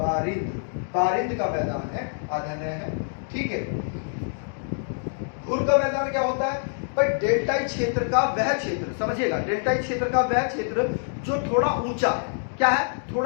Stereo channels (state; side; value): silent; right; digital silence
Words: बारिंद का मैदान है, आधन है। ठीक है। घुर का मैदान क्या होता है भाई, डेल्टाई क्षेत्र का वह क्षेत्र, समझिएगा, डेल्टाई क्षेत्र का वह क्षेत्र जो थोड़ा ऊंचा है। क्या है?